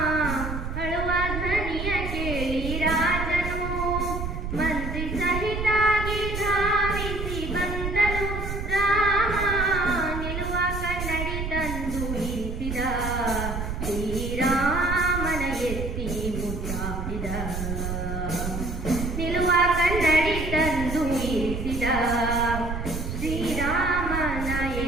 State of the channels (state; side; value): noise; right; rumble, 4 dB below the sound